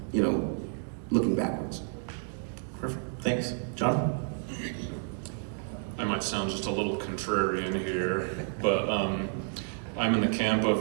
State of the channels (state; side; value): silent; left; 58 dB below the other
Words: looking backwards. Perfect, thanks. John? I might sound just a little contrarian here, but I'm in the camp